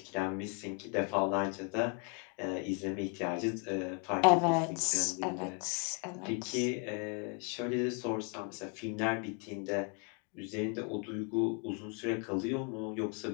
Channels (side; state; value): right; quieter; 36.3 dB